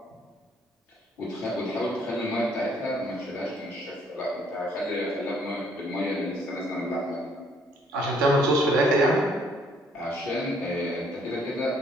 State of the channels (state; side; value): normal; both; correlation 0.65